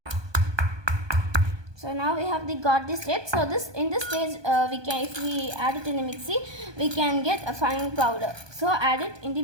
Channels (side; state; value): left; late; 1.2 ms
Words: So now we have got this state. So in this stage if we add it in the mixie, we can get a fine powder. So add it in the